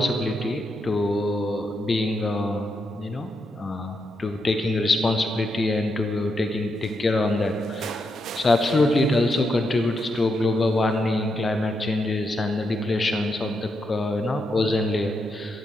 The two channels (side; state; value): both; normal; correlation 0.83